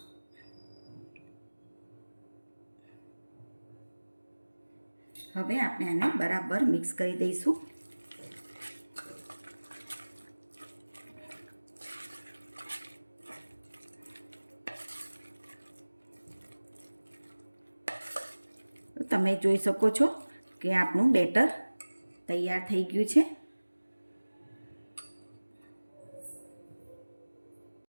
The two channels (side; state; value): both; inverted; correlation -1.00